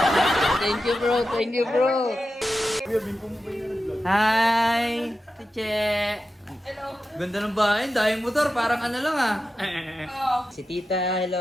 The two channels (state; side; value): normal; both; correlation 0.91